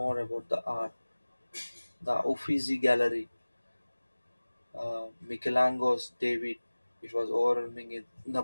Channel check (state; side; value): inverted; both; correlation -1.00